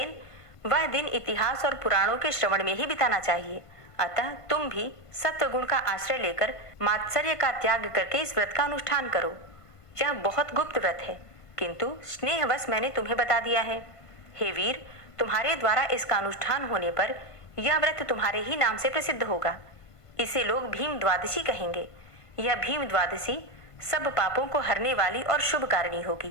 वह दिन इतिहास और पुराणों के श्रवण में ही बिताना चाहिए। अतः तुम भी सत्व गुण का आश्रय लेकर मात्सर्य का त्याग करके इस व्रत का अनुष्ठान करो। यह बहुत गुप्त व्रत है, किंतु स्नेहवश मैंने तुम्हें बता दिया है। हे वीर, तुम्हारे द्वारा इसका अनुष्ठान होने पर यह व्रत तुम्हारे ही नाम से प्रसिद्ध होगा। इसे लोग भीम द्वादशी कहेंगे। यह भीम द्वादशी सब पापों को हरने वाली और शुभ कारिणी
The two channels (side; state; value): right; late; 1.5 ms